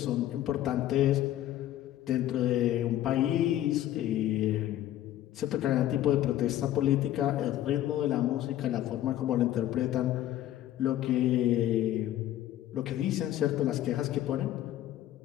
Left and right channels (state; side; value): quieter; right; 13.0 dB